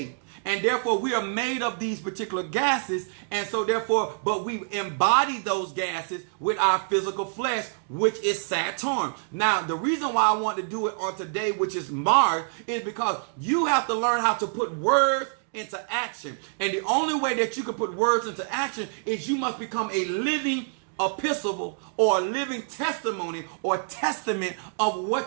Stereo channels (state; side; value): silent; left; digital silence